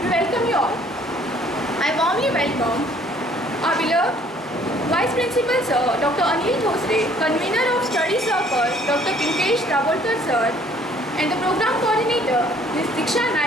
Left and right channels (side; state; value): both; normal; correlation 0.59